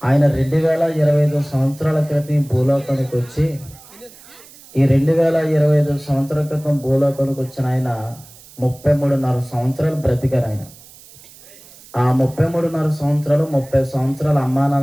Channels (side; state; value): right; noise; hiss, 22 dB below the sound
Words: ఆయన 2025 సంవత్సరాల క్రితం ఈ భూలోకానికి వచ్చి, ఈ 2025 సంవత్సరాల క్రితం భూలోకానికి వచ్చిన ఆయన 33.5 సంవత్సరాలు బ్రతికారు. ఆయన ఆ 33.5 సంవత్సరాలు 30 సంవత్సరాల అమ్మా